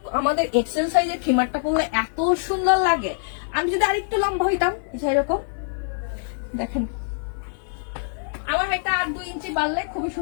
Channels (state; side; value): silent; right; 63 dB below the other